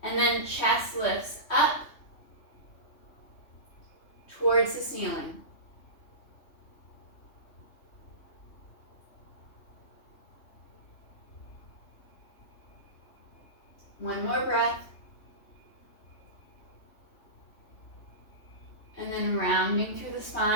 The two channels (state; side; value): late; right; 3.2 ms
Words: and then chest lifts up towards the ceiling. One more breath. And then rounding through the